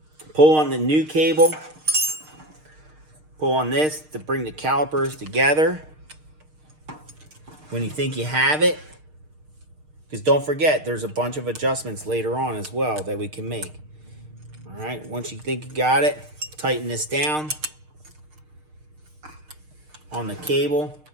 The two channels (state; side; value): late; left; 6.5 ms